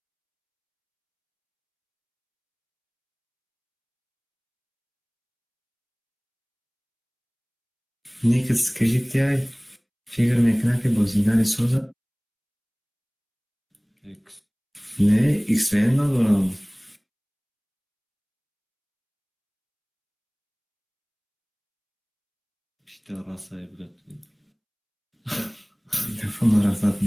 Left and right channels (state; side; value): identical; both; correlation 1.00